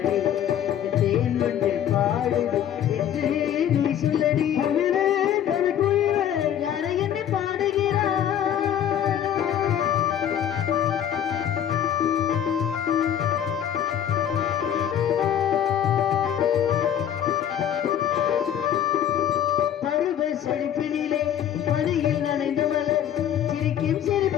தேன் வந்து பாடுது என்று நீ சொல்லடி. குயிலே கவி குயிலே யாரை என்னை பாடுகிறாய். பருவ செழிப்பினிலே பணியில் நனைந்து மலர் சிரிக்கும்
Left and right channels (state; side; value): quieter; right; 9.9 dB